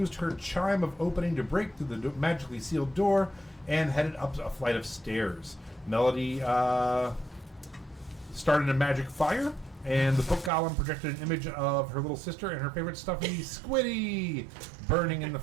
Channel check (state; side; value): drops out; left; at 10.5 s